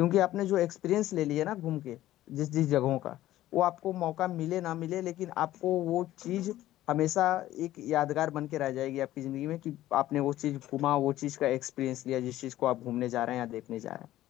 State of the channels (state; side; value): quieter; right; 14.4 dB